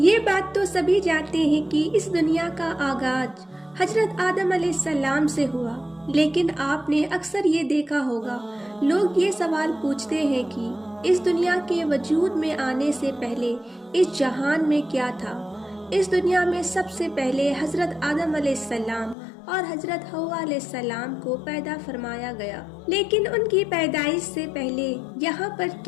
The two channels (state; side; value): drops out; right; at 19.2 s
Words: بات تو سبھی جانتے ہیں کہ اس دنیا کا آغاز حضرت آدم علیہ السلام سے ہوا، لیکن آپ نے اکثر یہ دیکھا ہوگا لوگ یہ سوال پوچھتے ہیں کہ اس دنیا کے وجود میں آنے سے پہلے اس جہان میں کیا تھا۔ اس دنیا میں سب سے پہلے حضرت آدم علیہ السلام اور حضرت حوا علیہ السلام کو پیدا فرمایا گیا، لیکن ان کی پیدائش سے پہلے یہاں پر